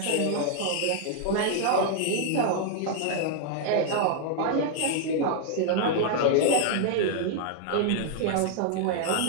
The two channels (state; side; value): different; both; correlation 0.00